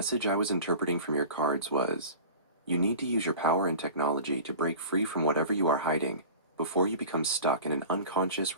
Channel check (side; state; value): both; inverted; correlation -0.38